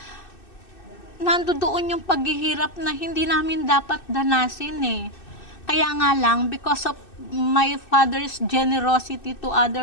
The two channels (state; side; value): late; right; 2.6 ms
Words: nandoon yung paghihirap na hindi namin dapat danasin eh. Kaya nga lang, because of my father's generosity to